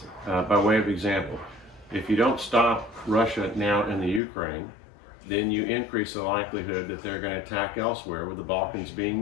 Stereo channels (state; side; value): drops out; right; at 4.2 s